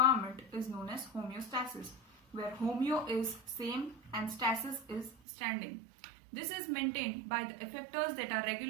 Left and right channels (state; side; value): drops out; left; at 5.2 s